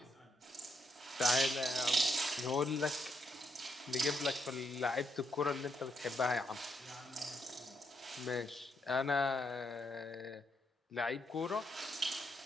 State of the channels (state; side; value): normal; both; correlation 0.78